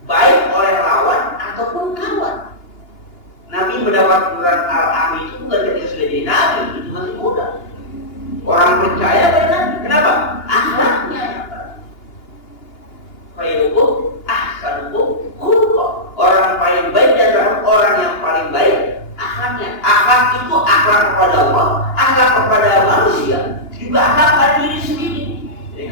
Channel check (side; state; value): right; late; 2.8 ms